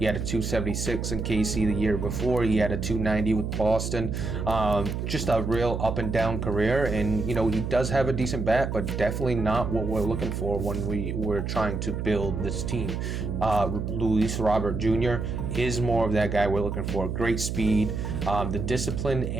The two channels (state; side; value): noise; right; hum, 3 dB below the sound